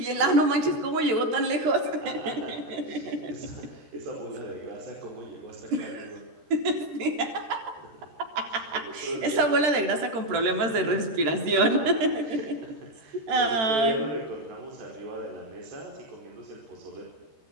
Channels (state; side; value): late; left; 13 ms